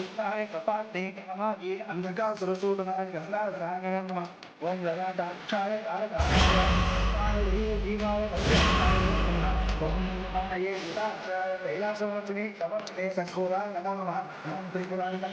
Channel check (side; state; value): both; identical; correlation 1.00